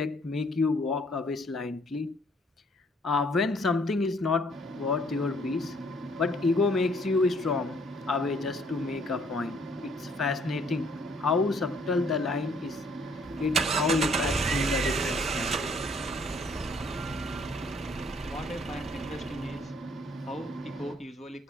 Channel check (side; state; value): both; normal; correlation 0.62